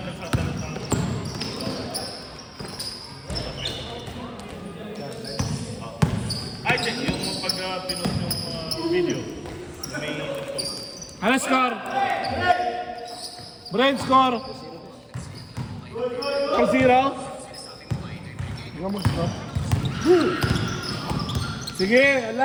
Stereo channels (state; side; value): identical; both; correlation 1.00